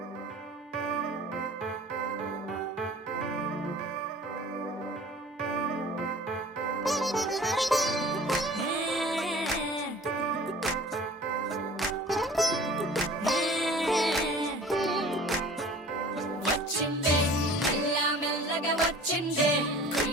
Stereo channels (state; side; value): normal; both; correlation 0.45